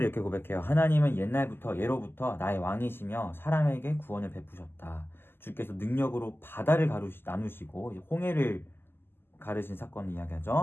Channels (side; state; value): right; late; 0.11 ms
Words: 이렇게 고백해요. 하나님은 옛날부터 예로부터 나의 왕이시며 사람에게 구원을 베푸셨다. 주께서 능력으로 바다를 나누시고 홍해를 가르신 사건을